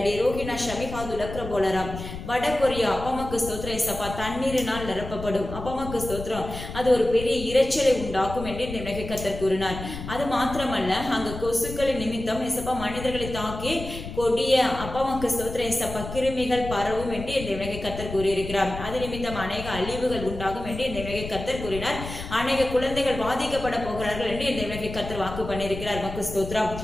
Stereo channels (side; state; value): left; noise; rumble, 9 dB below the sound